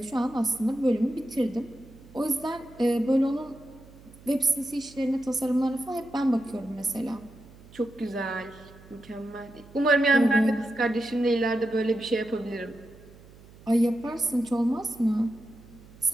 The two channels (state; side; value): noise; right; hum, 22 dB below the sound